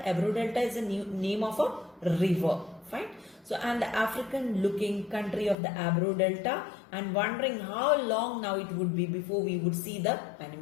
Ebro Delta is a name of a river. Fine. So, and the African-looking country of the Ebro Delta, and wondering how long now it would be before we would see the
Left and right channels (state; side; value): drops out; right; at 5.6 s